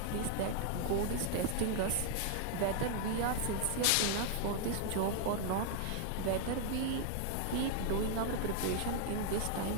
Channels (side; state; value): both; different; correlation 0.00